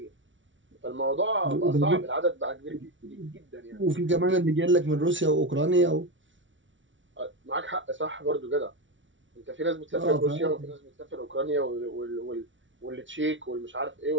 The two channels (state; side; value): late; left; 0.56 ms